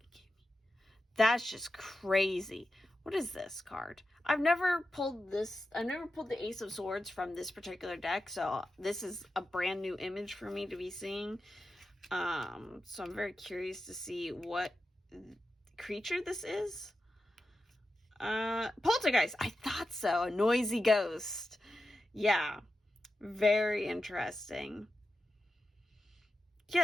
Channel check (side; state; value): both; normal; correlation 0.91